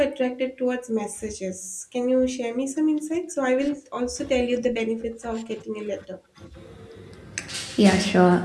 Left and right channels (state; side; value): identical; both; correlation 1.00